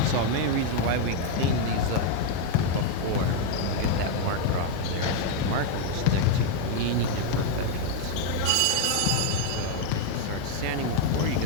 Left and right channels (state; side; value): different; both; correlation 0.01